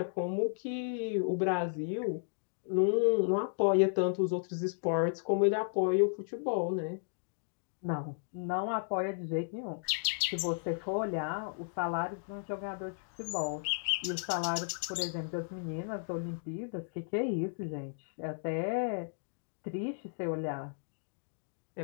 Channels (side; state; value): right; silent; digital silence